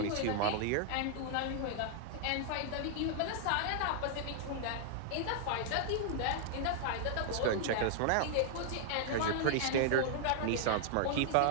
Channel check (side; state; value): both; different; correlation 0.00